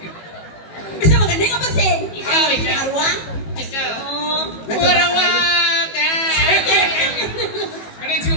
Bisa begending apa sih? Bisa Arwah. Bisa. Warawak. Ini si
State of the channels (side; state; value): right; late; 18 ms